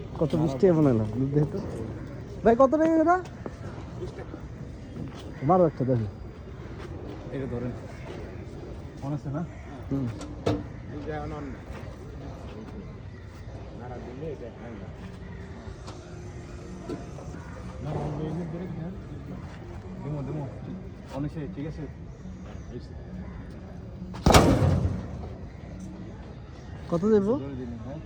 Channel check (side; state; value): both; identical; correlation 1.00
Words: কত বৃষ্টি বানাইলাম দেখো ভাই, কত টাকা এটা? মারো একটা দেখি। এটা ধরেন মনে আছে না? হুম ঠিক আছে। কত দেবো?